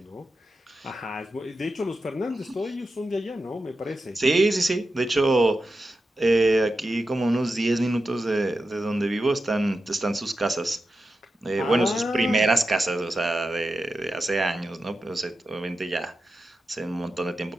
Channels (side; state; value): both; normal; correlation 0.90